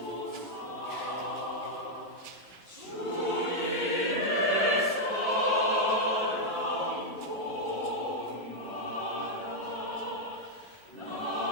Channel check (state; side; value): normal; both; correlation 0.00